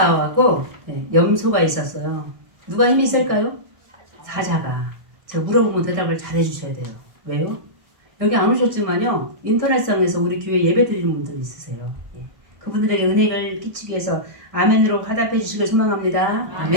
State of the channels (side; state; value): left; late; 1.6 ms